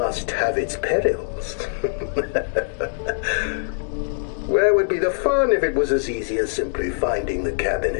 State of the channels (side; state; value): right; silent; digital silence